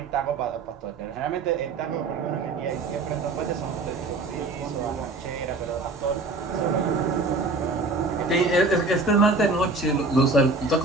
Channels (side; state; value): left; quieter; 3.5 dB